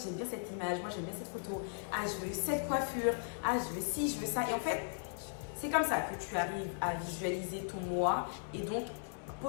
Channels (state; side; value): silent; right; 53 dB below the other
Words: bien cette image, moi j'aime bien cette photo, ah je veux cette coiffure, ah je veux ci, je veux ça. Et en fait, c'est comme ça que tu arrives à visualiser ton mois et donc